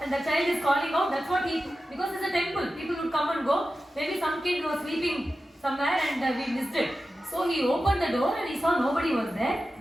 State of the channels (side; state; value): both; normal; correlation 0.93